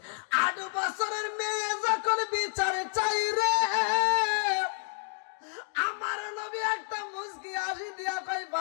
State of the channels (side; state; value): right; silent; 58 dB below the other